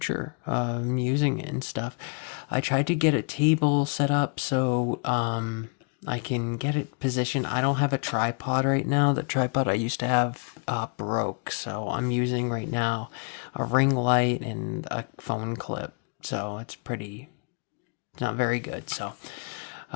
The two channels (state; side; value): quieter; right; 38.0 dB